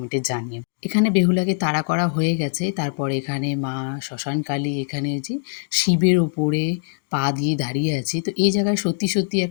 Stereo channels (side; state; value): right; silent; digital silence